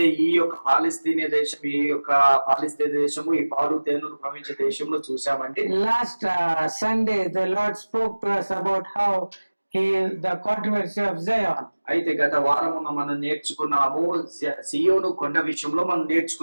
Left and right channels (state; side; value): inverted; both; correlation -1.00